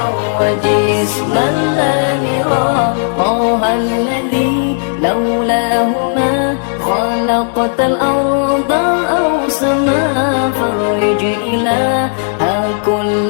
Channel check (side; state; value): right; silent; digital silence